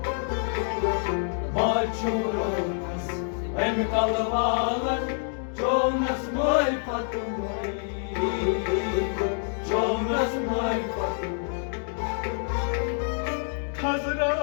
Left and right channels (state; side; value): silent; right; 60 dB below the other